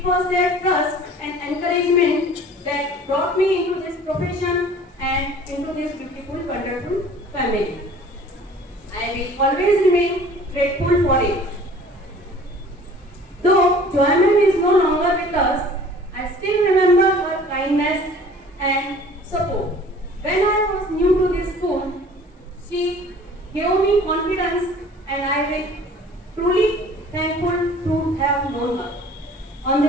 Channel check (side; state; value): both; normal; correlation 0.48